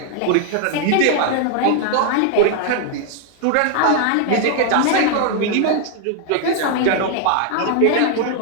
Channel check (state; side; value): different; both; correlation 0.00